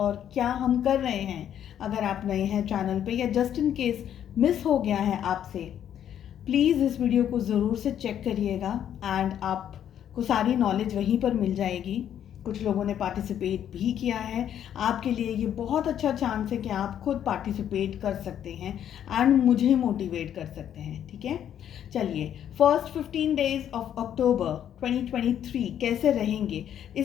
क्या हम कर रहे हैं। अगर आप नए हैं चैनल पे या जस्ट इन केस मिस हो गया है आपसे, प्लीज़ इस वीडियो को ज़रूर से चेक करिएगा एंड आपको सारी नॉलेज वहीं पर मिल जाएगी। कुछ लोगों ने पार्टिसिपेट भी किया है। आपके लिए ये बहुत अच्छा चांस है कि आप खुद पार्टिसिपेट कर सकते हैं एंड मुझे मोटिवेट कर सकते हैं। ठीक है, चलिए, फर्स्ट 15 डेज ऑफ अक्टूबर 2023 कैसे रहेंगे,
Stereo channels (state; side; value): quieter; right; 10.0 dB